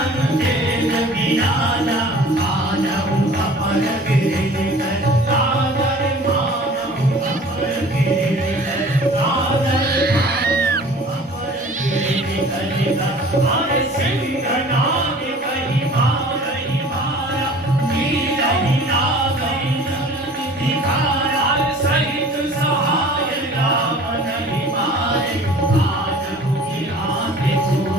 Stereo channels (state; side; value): normal; both; correlation 0.46